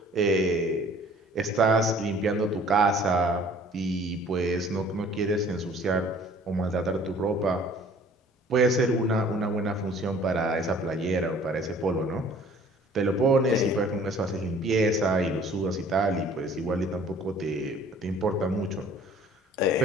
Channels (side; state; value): both; normal; correlation 0.52